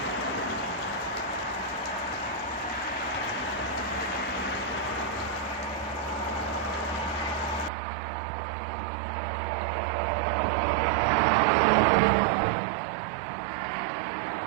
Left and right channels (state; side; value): drops out; left; at 7.7 s